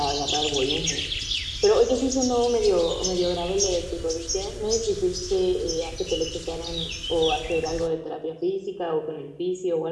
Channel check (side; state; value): both; identical; correlation 1.00